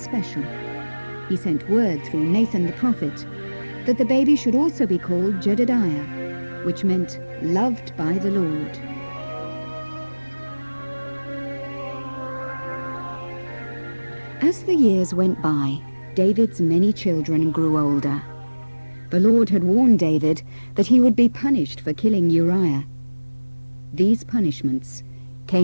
He sent word through Nathan the prophet that the baby should also be called Jedediah, which meant loved by the Lord. As the years went by, David's many children grew older. The Lord had warned David that he would be punished for killing Uriah. These punishments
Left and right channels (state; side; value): inverted; both; correlation -1.00